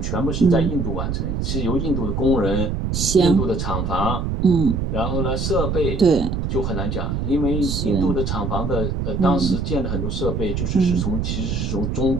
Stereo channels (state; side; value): noise; right; rumble, 1 dB below the sound